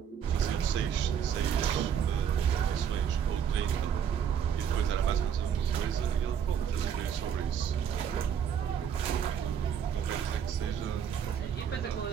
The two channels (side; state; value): left; quieter; 8.3 dB